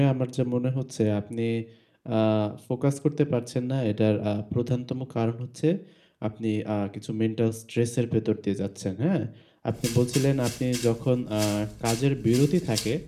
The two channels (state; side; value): identical; both; correlation 1.00